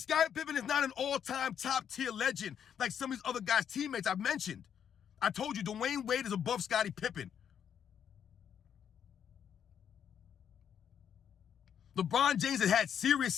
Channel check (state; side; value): quieter; right; 8.6 dB